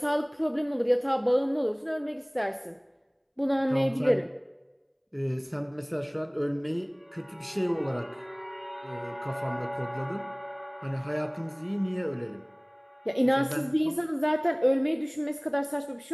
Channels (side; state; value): both; identical; correlation 1.00